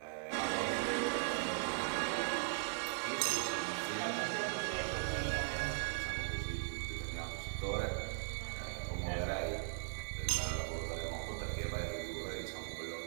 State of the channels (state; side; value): silent; left; 52 dB below the other